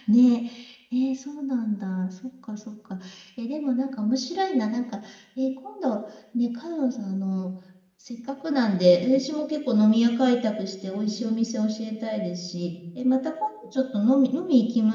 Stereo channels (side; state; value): both; identical; correlation 1.00